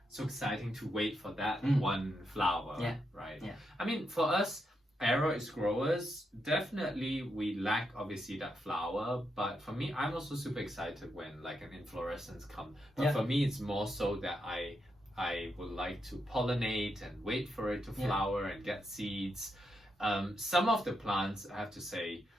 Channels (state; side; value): normal; both; correlation 0.82